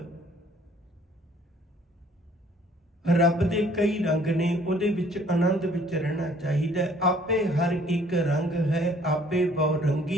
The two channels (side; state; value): both; normal; correlation 0.58